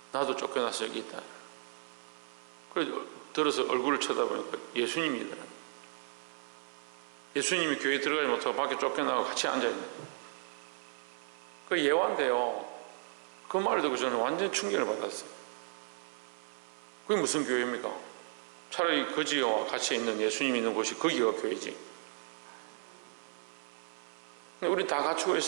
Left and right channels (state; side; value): silent; left; 55 dB below the other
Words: 나도 쫓겨나서 여기 있다. 그래서 들어서 얼굴을 쳐다보니까 예수님이더라. 예수님이 교회에 들어가지 못하고 밖에 쫓겨나고 같이 앉아있는. 그 예화인데요. 그 말을 듣고 저는 완전 충격을 받았어요. 그게 무슨 교회입니까? 차라리 거지와 같이 있는 예수님이 있는 곳이 거기가 교회지. 우리 다 갖추고